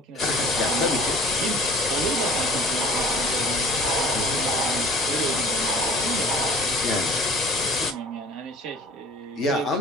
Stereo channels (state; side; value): normal; both; correlation 0.47